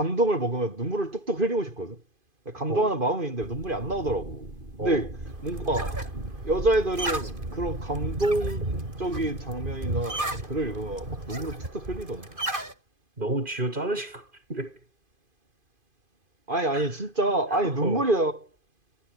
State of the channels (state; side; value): late; left; 2.5 ms